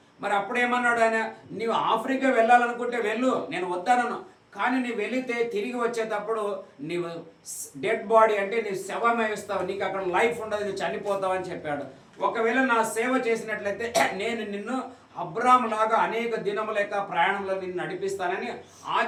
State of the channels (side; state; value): both; identical; correlation 1.00